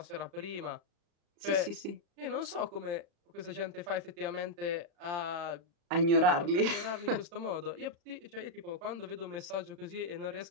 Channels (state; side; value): late; left; 35 ms